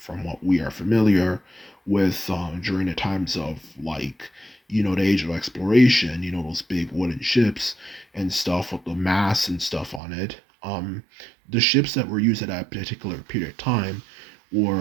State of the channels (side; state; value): left; drops out; at 10.0 s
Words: what we are familiar with during the times of, like, the age of exploration. Those big wooden ships and stuff with the masts and stuff on it. The ships that were used at that particular period of time